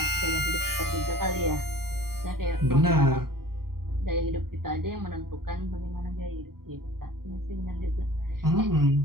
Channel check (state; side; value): late; left; 0.93 ms